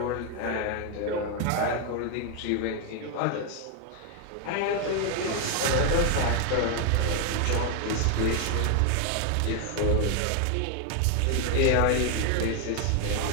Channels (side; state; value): both; different; correlation 0.01